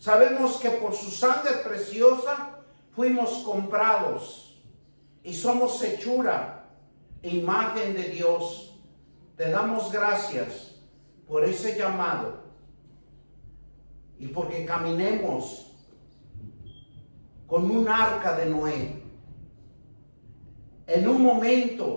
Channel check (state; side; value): inverted; both; correlation -1.00